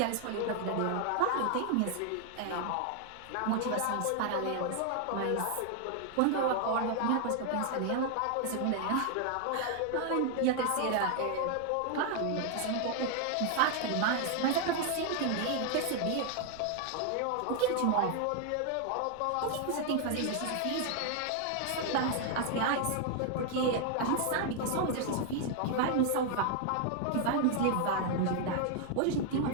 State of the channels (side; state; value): both; different; correlation 0.00